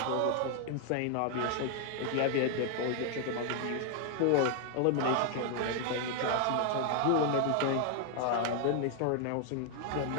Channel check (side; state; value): both; different; correlation 0.00